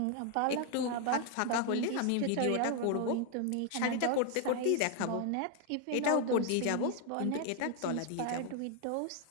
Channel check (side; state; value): both; different; correlation 0.00